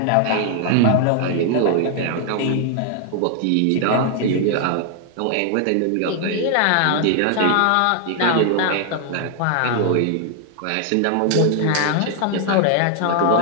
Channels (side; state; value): both; different; correlation 0.00